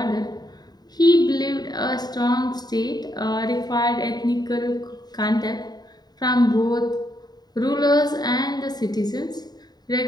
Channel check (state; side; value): late; right; 0.20 ms